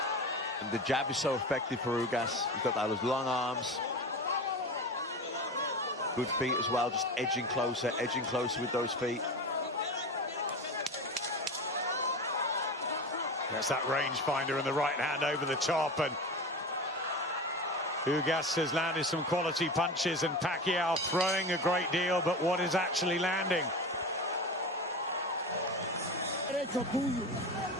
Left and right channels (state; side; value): normal; both; correlation 0.27